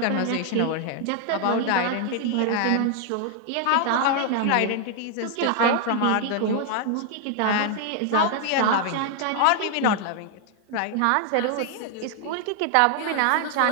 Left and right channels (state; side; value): different; both; correlation 0.00